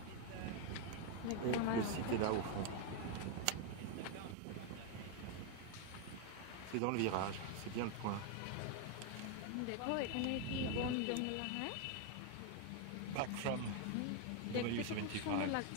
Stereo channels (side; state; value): both; different; correlation 0.01